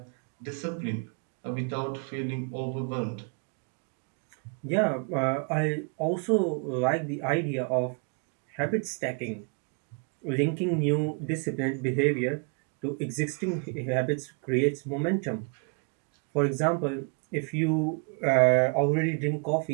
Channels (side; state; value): left; quieter; 38.0 dB